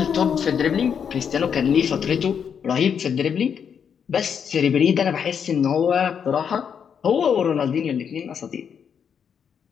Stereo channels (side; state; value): right; quieter; 7.4 dB